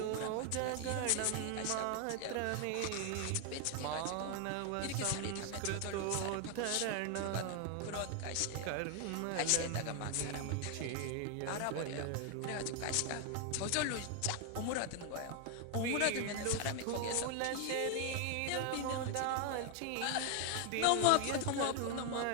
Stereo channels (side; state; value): both; different; correlation 0.01